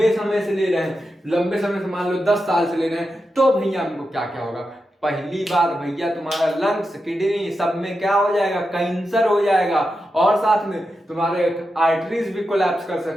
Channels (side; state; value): both; normal; correlation 0.89